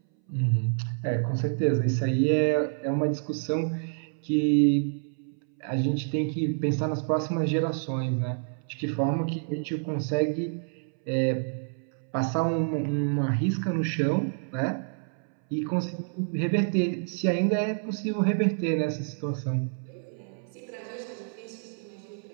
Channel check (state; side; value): silent; left; 59 dB below the other